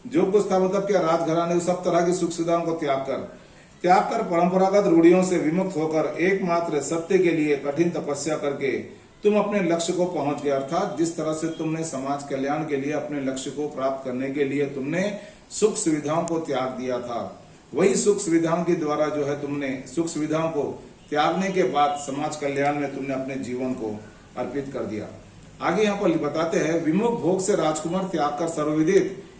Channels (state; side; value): identical; both; correlation 1.00